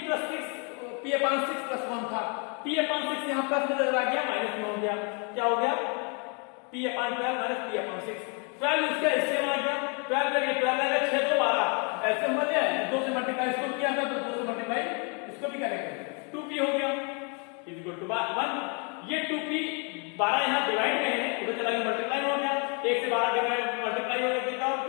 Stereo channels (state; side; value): quieter; right; 36.0 dB